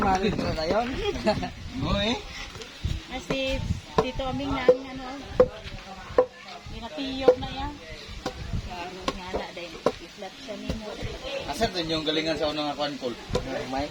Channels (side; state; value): both; identical; correlation 1.00